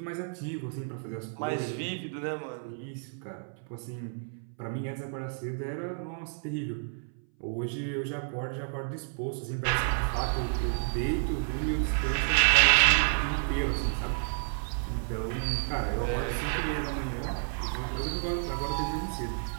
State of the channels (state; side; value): silent; left; 57 dB below the other